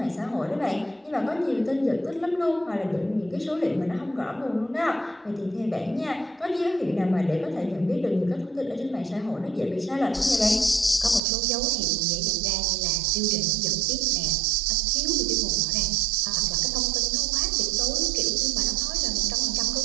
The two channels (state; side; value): drops out; left; at 11.2 s